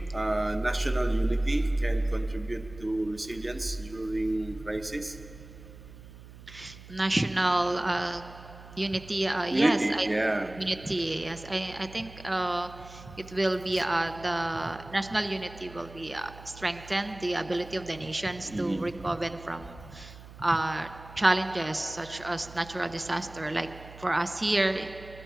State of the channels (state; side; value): noise; right; hum, 18 dB below the sound